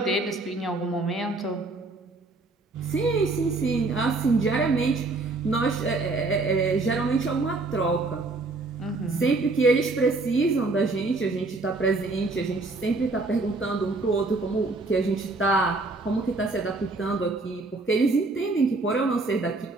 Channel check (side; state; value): left; quieter; 3.4 dB